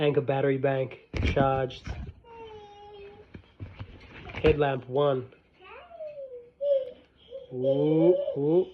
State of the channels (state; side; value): identical; both; correlation 1.00